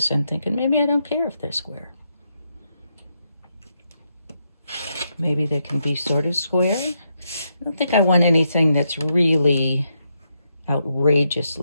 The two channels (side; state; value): both; inverted; correlation -0.81